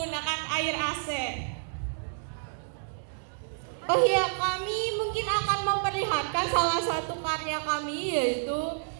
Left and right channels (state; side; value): silent; left; digital silence